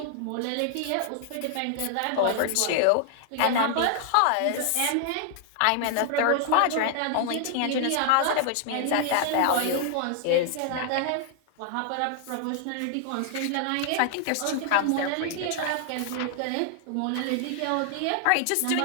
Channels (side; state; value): both; different; correlation 0.00